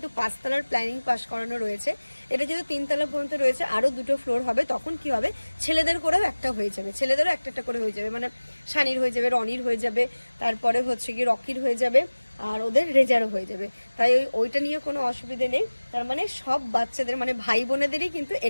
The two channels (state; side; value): inverted; both; correlation -1.00